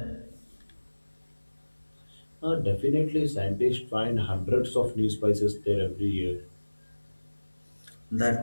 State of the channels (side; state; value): both; inverted; correlation -1.00